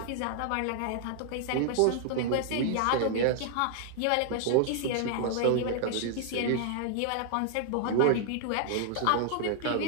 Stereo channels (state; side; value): different; both; correlation -0.01